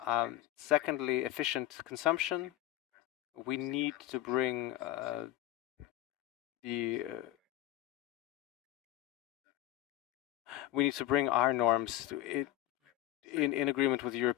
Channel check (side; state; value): right; quieter; 14.1 dB